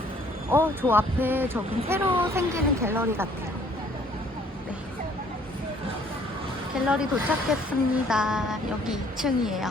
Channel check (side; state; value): both; normal; correlation 0.60